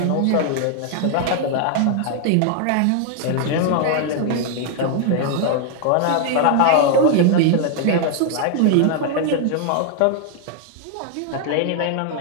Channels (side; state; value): both; different; correlation 0.00